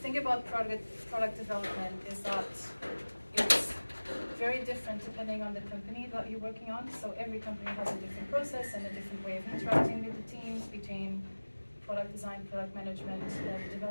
thing about product development is that it's very different depending on the company that you're working on. So every company has a different process and a different way of interacting with the teams between product design, product management,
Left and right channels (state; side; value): inverted; both; correlation -1.00